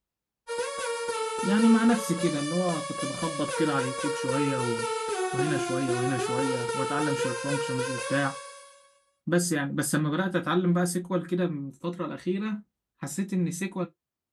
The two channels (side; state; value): both; identical; correlation 1.00